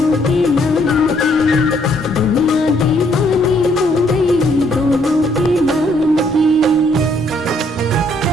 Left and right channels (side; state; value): both; normal; correlation 0.68